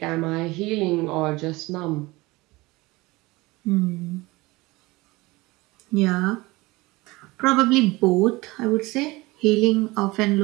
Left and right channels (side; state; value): left; quieter; 21.8 dB